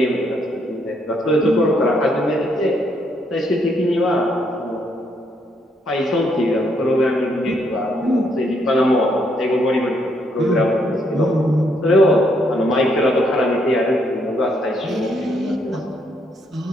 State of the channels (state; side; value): normal; both; correlation 0.73